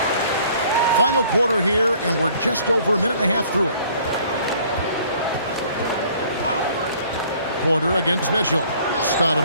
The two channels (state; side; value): inverted; both; correlation -0.56